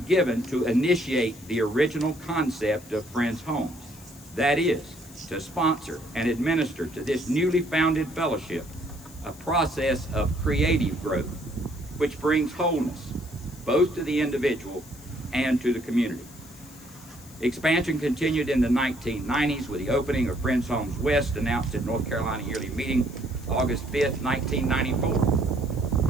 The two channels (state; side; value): noise; left; hiss, 21 dB below the sound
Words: to initiate the original concept of Friends Homes. That is, to sponsor and administer to this newly founded fellowship a process of creative growth, which brings wholeness both to the individual and to the community. Expansion continued in the 1990s with the opening of Friends Homes West, announced at North Carolina Yearly Meeting, August 5th,